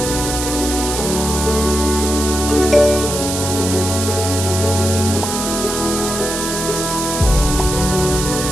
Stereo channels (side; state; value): right; noise; hiss, 4 dB below the sound